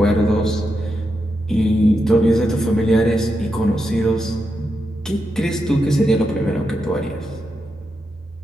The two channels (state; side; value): normal; both; correlation 0.85